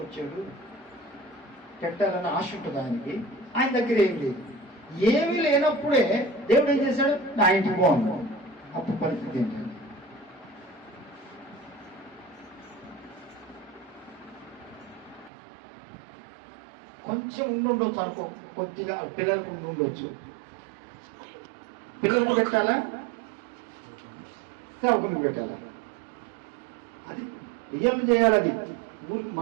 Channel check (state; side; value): drops out; left; at 15.3 s